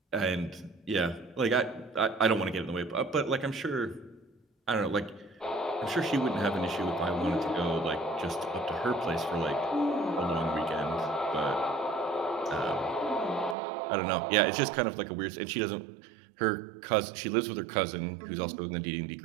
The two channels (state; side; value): drops out; left; at 13.6 s